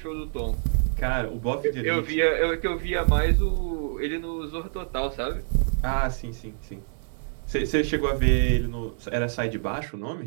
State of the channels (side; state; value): left; silent; digital silence